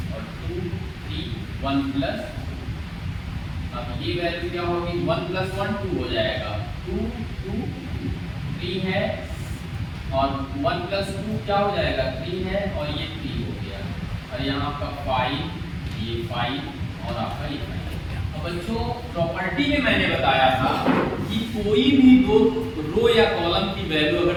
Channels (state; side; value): identical; both; correlation 1.00